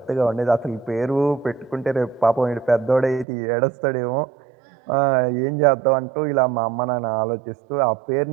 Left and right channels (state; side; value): drops out; left; at 3.2 s